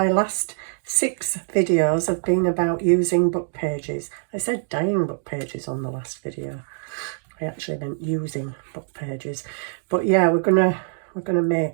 last 6 videos have been about using book pages. I said dyeing book pages on the last video. I actually meant using book pages. But yeah, we're gonna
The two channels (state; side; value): silent; left; digital silence